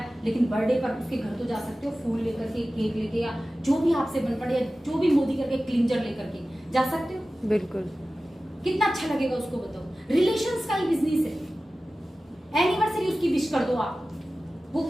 लेकिन बर्थडे पर उसके घर तो जा सकते हो, फूल लेकर के, केक लेके, या जो भी आपसे बन पड़े, या जो भी मोदी करके क्लींजर लेकर के जा सकते हो। बिल्कुल, कितना अच्छा लगेगा उसको, बताओ। रिलेशंस का ही बिजनेस है। एनिवर्सरी उसकी विश कर दो आप, वो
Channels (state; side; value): normal; both; correlation 0.96